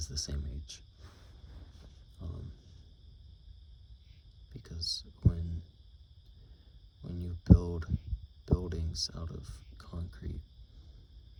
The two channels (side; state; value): both; identical; correlation 1.00